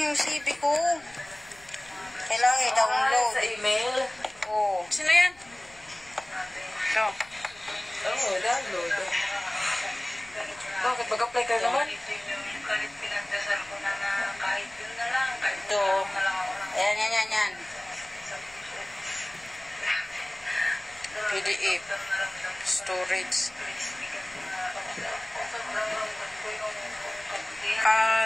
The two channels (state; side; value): noise; left; rumble, 26 dB below the sound